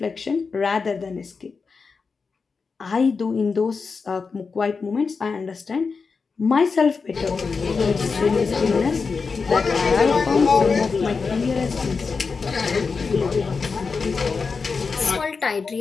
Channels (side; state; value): right; quieter; 4.9 dB